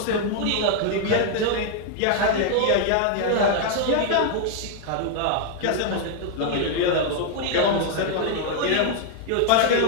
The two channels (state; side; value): different; both; correlation 0.00